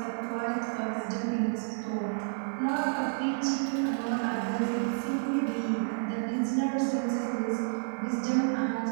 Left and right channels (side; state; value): left; silent; digital silence